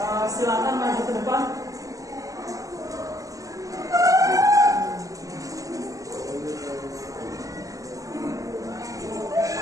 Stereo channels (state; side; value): late; left; 0.16 ms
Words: silakan maju ke depan.